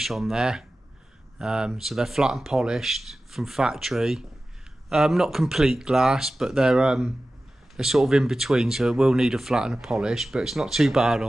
on there. So they're flat and polished from factory. Not complete glass, but they're sort of in between, so it will need a flat and a polish, but it's not too bad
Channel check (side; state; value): both; normal; correlation 0.95